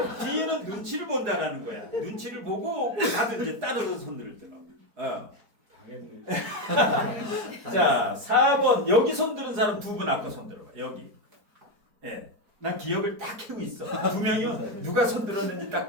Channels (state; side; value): late; left; 4.5 ms